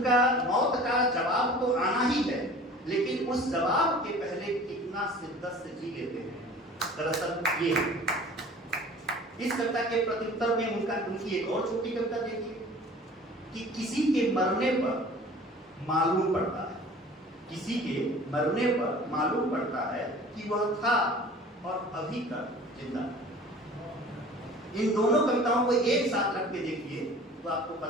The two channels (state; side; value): normal; both; correlation 0.45